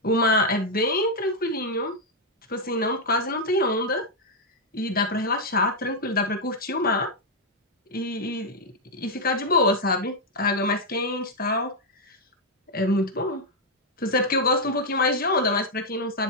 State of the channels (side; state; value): both; normal; correlation -0.01